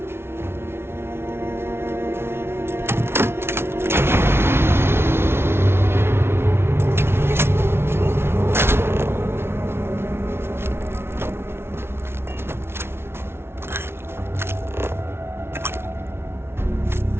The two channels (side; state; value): left; late; 0.12 ms